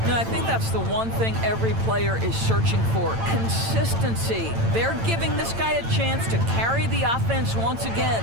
And I think that's the one thing every player is searching for, consistency. They're giving this guy a chance to carry the offense once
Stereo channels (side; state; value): left; late; 8.9 ms